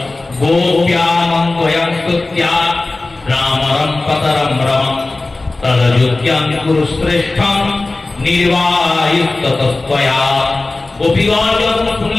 गोप्यामन्वयं स्तुत्या रामरं पतरं रमं तदयोग्यं कुरु श्रेष्ठं निर्वायुस्ततस्त्वया। গোপীগণ যখন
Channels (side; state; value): right; quieter; 3.2 dB